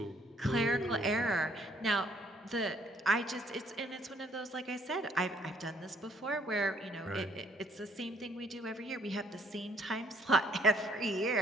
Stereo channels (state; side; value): normal; both; correlation 0.65